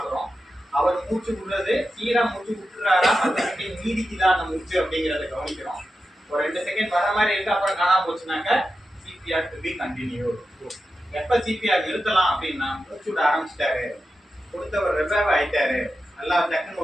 அவர் மூச்சு விடுறது சீரா மூச்சு விட்டுறாரா, 10 செகண்ட் நீடிக்குதா அந்த மூச்சு அப்படிங்கிறத கவனிக்கிறோம். ஒரு 2 செகண்ட் வர மாதிரி இருக்கு, அப்புறம் காணாம போச்சுனாக்க சிபிஆர் டு பி கண்டினியூ. எப்போ சிபிஆர் நிறுத்தலாம் அப்படின்னா, மூச்சு விட ஆரம்பிச்சிட்டாரு, கொடுத்தவர் ரெபேவ் ஆயிட்டாரு, நல்லா டக்குன்னு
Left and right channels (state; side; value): normal; both; correlation 0.91